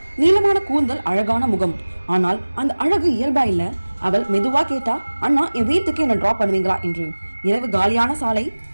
நீளமான கூந்தல், அழகான முகம். ஆனால் அந்த அழகு இயல்பா இல்ல. அவள் மெதுவா கேட்டா, அண்ணா என் வீட்டுக்கு என்ன டிராப் பண்ணுவீங்களா என்று. இரவு காலியான சாலை.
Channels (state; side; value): inverted; both; correlation -1.00